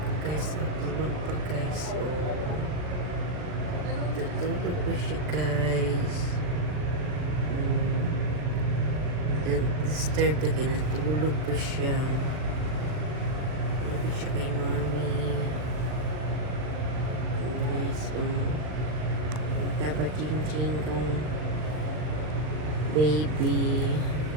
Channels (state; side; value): late; left; 39 ms